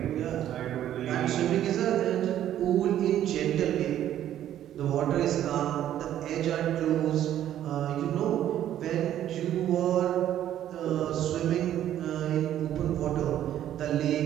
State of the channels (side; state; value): left; quieter; 11.5 dB